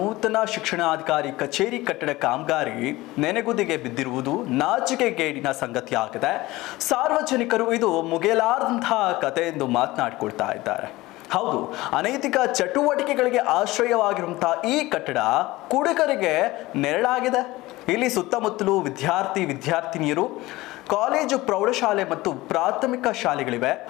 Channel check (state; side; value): quieter; right; 19.1 dB